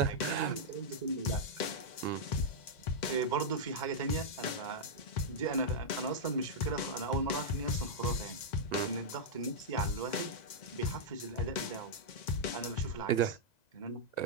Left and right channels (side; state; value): right; late; 2.1 ms